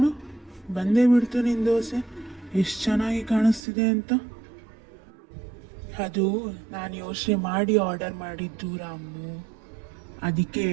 ಬಂದೇ ಬಿಡ್ತು ನಿನ್ನ ದೋಸೆ, ಎಷ್ಟು ಚೆನ್ನಾಗಿ ಕಾಣಿಸ್ತಿದೆ ಅಂತ. ಅದು ನಾನು ಯೋಚನೆ ಮಾಡಿ ಆರ್ಡರ್ ಮಾಡಿದ್ದು ರಾಮು. ಅದಕ್ಕೆ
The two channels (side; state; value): left; drops out; at 3.6 s